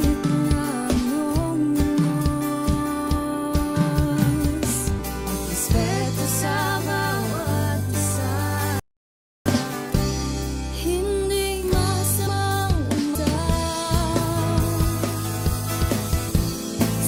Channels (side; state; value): both; identical; correlation 1.00